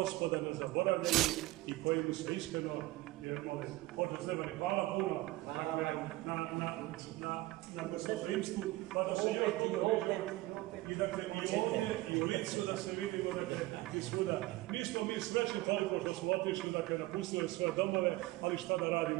ne zaboravljaju i koji mu se iskreno mole. Oče Stefane, hvala puno, dakle, na gostoprimstvu, pa da se još puno vidimo, i, dakle, i ovdje, i u Licu da se vidimo, dakle, i svuda. Nismo mi srećni toliko što smo otišli, dakle, napustili svoje domove, ali šta da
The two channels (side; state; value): left; quieter; 18.9 dB